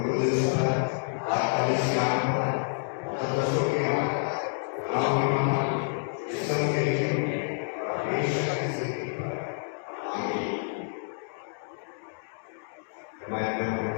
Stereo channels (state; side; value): silent; right; digital silence